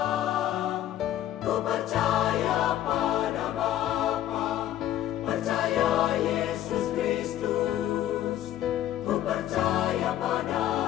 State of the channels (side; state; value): right; quieter; 12.4 dB